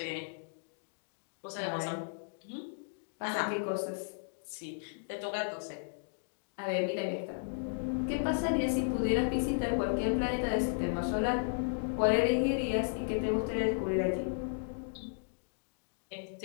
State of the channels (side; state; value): right; silent; digital silence